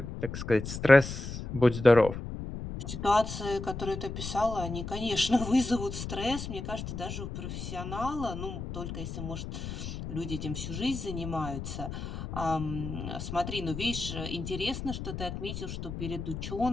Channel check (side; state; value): left; noise; rumble, 7 dB below the sound